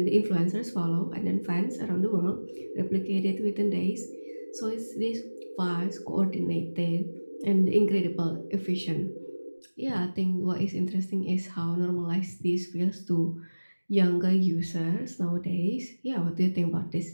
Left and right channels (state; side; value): inverted; both; correlation -1.00